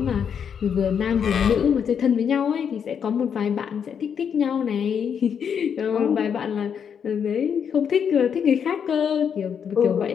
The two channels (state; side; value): quieter; right; 7.5 dB